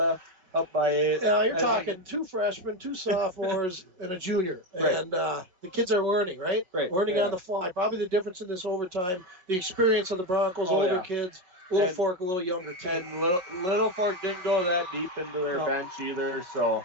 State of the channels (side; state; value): left; late; 5.4 ms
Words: Up by 8. Yeah, you're talking 2 freshmen, 2 sophomores, and a junior. Right. And the kids are learning, right? Right. Learning on the fly. Probably the difference in this overtime, the experience of the Broncos, older kids, Littlefork, a little younger team. And Littlefork didn't go that deep into their bench either, so.